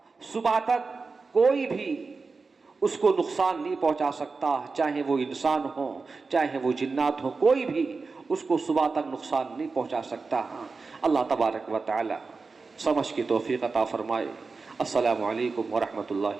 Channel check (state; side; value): quieter; left; 4.3 dB